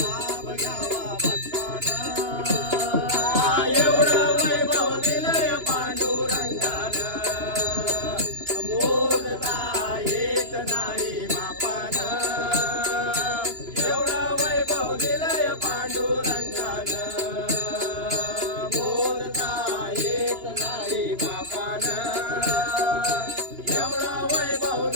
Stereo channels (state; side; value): late; left; 2.9 ms